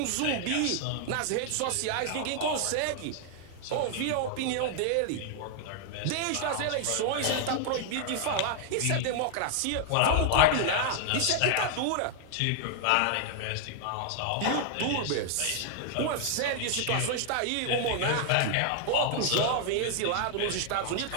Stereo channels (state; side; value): different; both; correlation 0.00